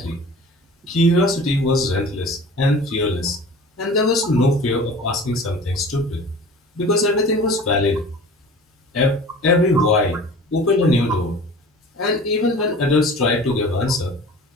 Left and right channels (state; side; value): normal; both; correlation 0.42